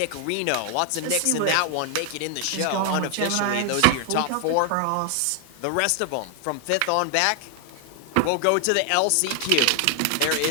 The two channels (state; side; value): different; both; correlation 0.00